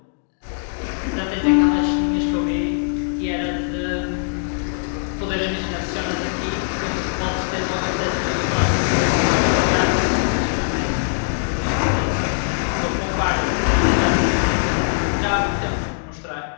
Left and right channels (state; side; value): silent; right; digital silence